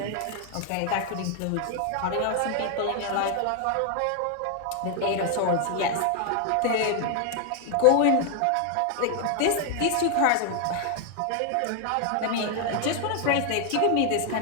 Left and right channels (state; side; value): different; both; correlation 0.00